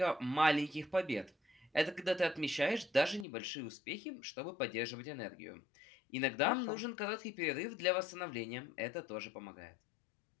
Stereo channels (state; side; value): drops out; right; at 3.2 s